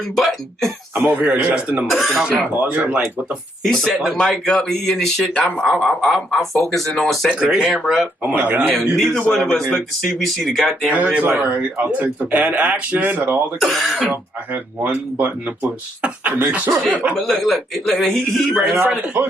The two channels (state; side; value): normal; both; correlation 0.73